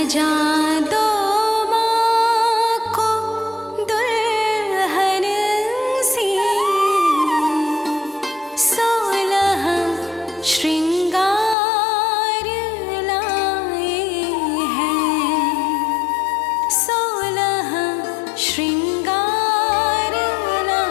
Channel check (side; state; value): right; drops out; at 11.6 s